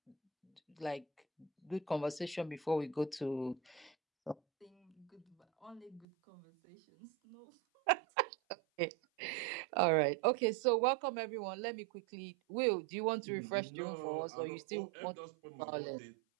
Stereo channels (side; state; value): left; drops out; at 6.1 s